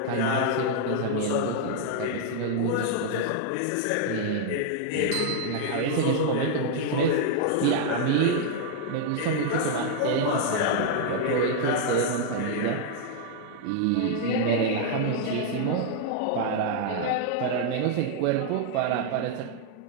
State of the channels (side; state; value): both; different; correlation -0.01